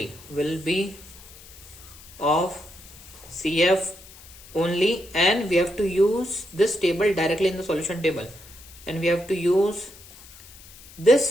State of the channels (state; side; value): noise; left; hiss, 20 dB below the sound